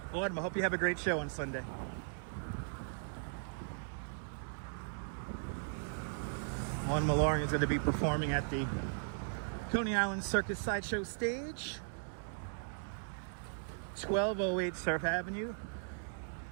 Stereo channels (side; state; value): left; silent; digital silence